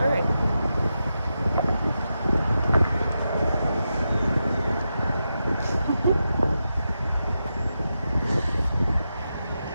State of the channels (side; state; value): both; inverted; correlation -0.88